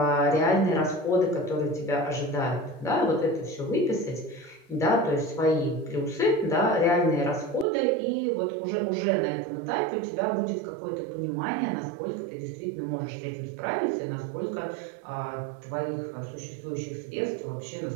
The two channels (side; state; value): left; drops out; at 7.7 s